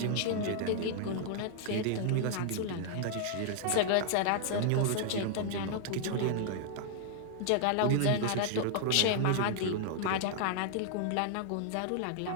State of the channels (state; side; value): different; both; correlation 0.00